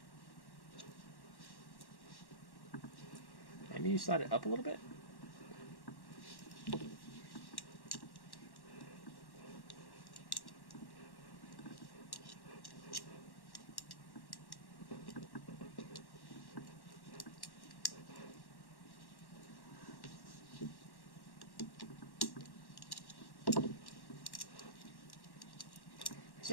Maybe you slide it up a little bit?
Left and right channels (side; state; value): right; late; 1.1 ms